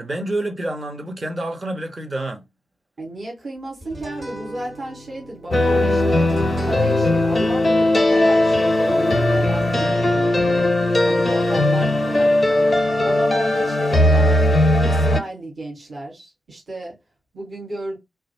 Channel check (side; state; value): both; normal; correlation 0.87